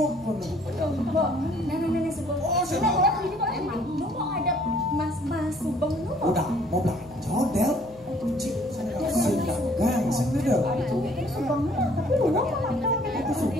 kono. Nenek sebelum. Oh, sebelum ini boleh emang. Lu mau ada mas subeng lu mau. Udah, mau belanja Del. Ci, sedangkan sing Del. Ini subeng lu, tapi lu mau makan. Itu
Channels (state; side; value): noise; left; hum, 23 dB below the sound